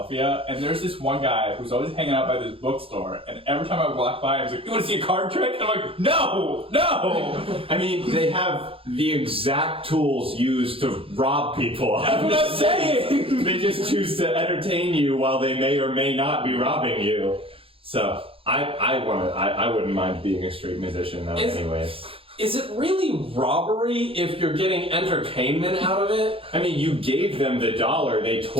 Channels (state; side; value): late; left; 0.27 ms